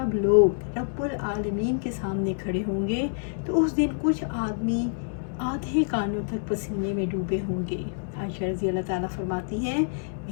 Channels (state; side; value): silent; right; digital silence